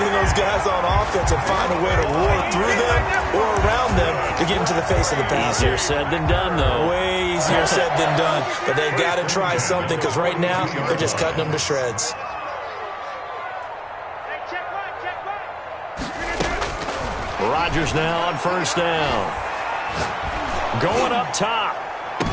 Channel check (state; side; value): identical; both; correlation 1.00